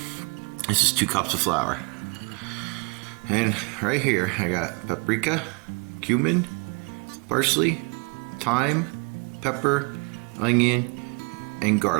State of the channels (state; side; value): quieter; left; 30.2 dB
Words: This is 2 cups of flour. And right here I got paprika, cumin, parsley, thyme, pepper, onion, and